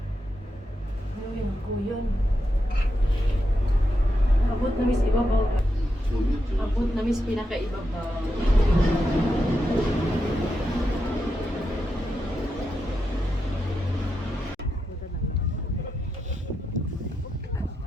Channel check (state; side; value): normal; both; correlation 0.86